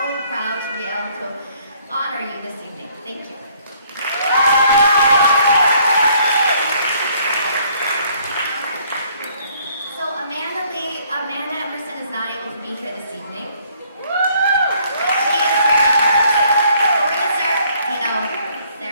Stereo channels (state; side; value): inverted; both; correlation -0.63